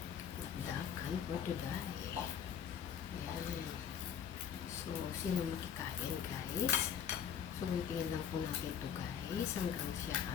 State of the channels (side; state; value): right; quieter; 8.4 dB